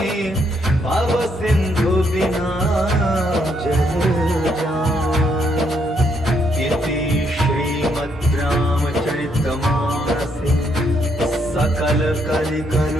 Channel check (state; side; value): normal; both; correlation 0.74